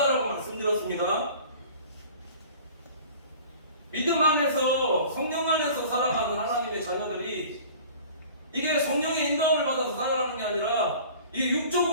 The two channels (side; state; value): both; inverted; correlation -0.44